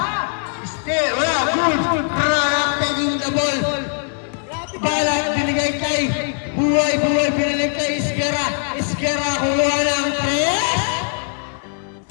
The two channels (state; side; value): silent; right; 57 dB below the other